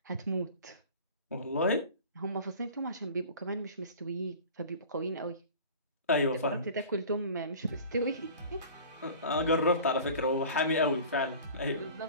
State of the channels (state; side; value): inverted; both; correlation -0.41